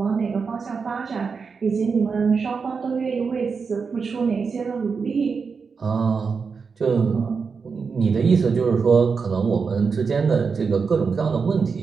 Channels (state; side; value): quieter; left; 5.3 dB